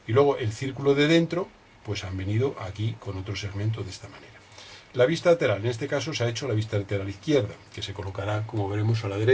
Y luego el círculo de dentro, pues han venido aquí con otro segmento de esta manera. La vista lateral, en este caso se ha hecho la vista lateral izquierda, que se colocará, como veremos, a la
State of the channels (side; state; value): both; identical; correlation 1.00